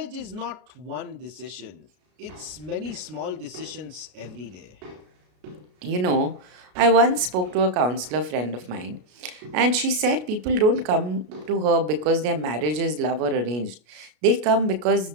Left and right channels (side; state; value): left; late; 33 ms